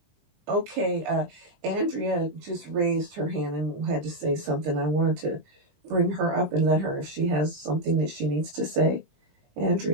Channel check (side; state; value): left; late; 19 ms